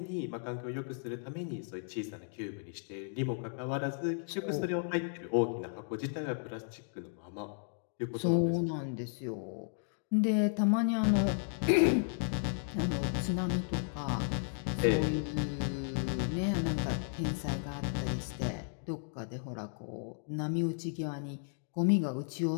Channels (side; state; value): right; silent; digital silence